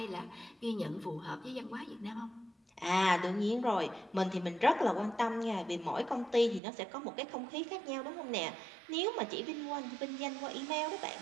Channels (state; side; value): drops out; left; at 6.6 s